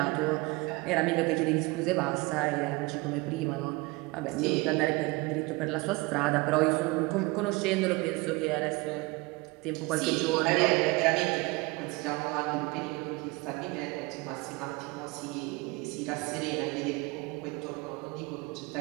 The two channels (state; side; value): quieter; left; 24.7 dB